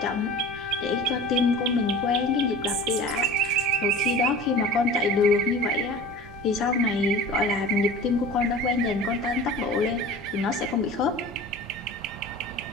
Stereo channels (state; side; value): normal; both; correlation 0.38